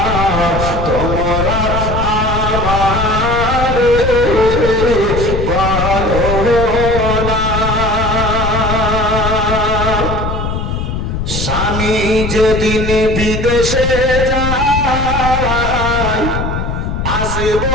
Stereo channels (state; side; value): noise; left; rumble, 3 dB below the sound